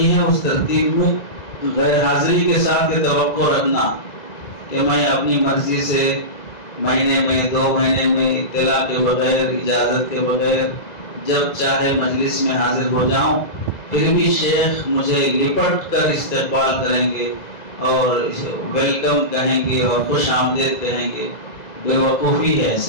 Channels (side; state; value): right; late; 2.0 ms